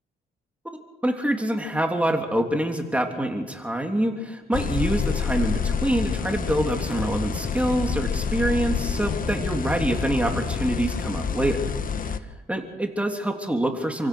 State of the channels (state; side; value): normal; both; correlation 0.80